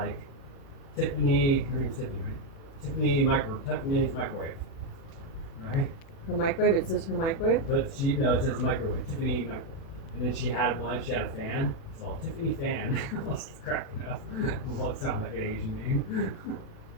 Tiffany. Her name's Tiffany, right? Tiffany's microwave, right? Her microwave. It says her microwave. But it says microwave. Tiffany microwave. And then she had one. She had a fan. It's called Tiffany Fan. I was cracking up. Well, it sounds like an Asian name.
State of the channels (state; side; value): late; right; 37 ms